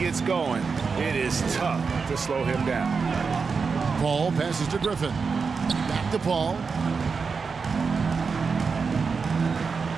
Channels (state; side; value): quieter; left; 5.2 dB